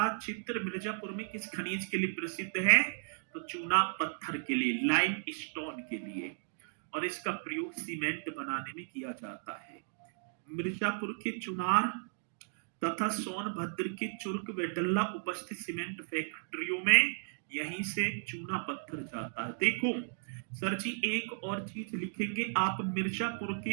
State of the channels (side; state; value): left; silent; digital silence